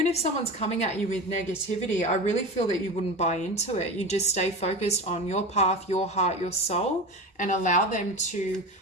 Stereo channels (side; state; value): both; normal; correlation 0.26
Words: if someone's coming at you with negativity, I really feel that you wouldn't buy into it. You just stay focused on your path, your heart, your soul, and allow them to